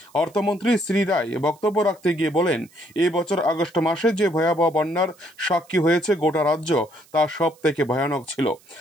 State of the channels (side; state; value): right; noise; hiss, 29 dB below the sound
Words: অর্থমন্ত্রী শ্রী রায় বক্তব্য রাখতে গিয়ে বলেন, এই বছর আগস্ট মাসে যে ভয়াবহ বন্যার সাক্ষী হয়েছে গোটা রাজ্য, তা সব থেকে ভয়ানক ছিল।